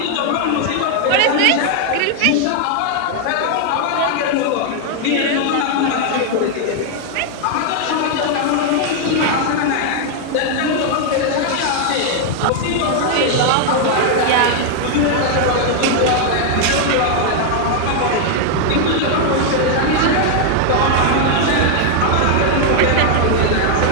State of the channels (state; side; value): different; both; correlation 0.00